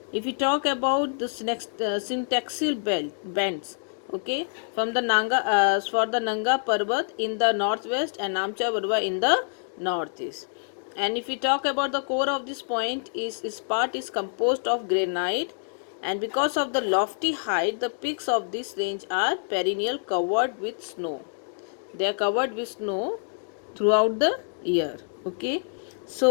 If we talk about the syntaxial bends, okay, from the Nanga Parbat in the northwest and Namcha Parbat in the northeast. And if we talk about the core of this point, is part is composed of granite, and because of the lofty height, the peaks of this range are perennial covered with snow. They are covered with snow throughout the year. Okay,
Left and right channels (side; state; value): right; silent; digital silence